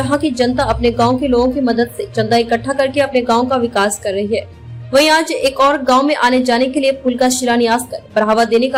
की जनता अपने गांव के लोगों की मदद से चंदा इकट्ठा करके अपने गांव का विकास कर रही है। वहीं आज एक और गांव में आने जाने के लिए पुल का शिलान्यास कर बढ़ावा देने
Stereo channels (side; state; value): both; identical; correlation 1.00